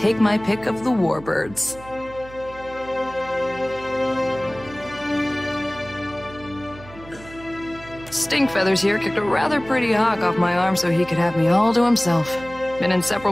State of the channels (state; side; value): noise; right; hum, 19 dB below the sound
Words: my pick of the warbirds. Stinkfeathers here kicked a rather pretty hawk off my arm so he could have me all to himself. Been